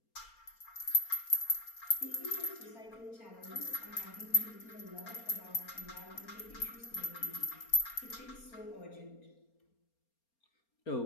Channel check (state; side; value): late; right; 4.3 ms